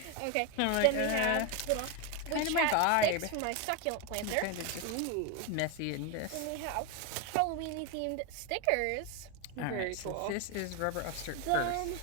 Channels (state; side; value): different; both; correlation 0.02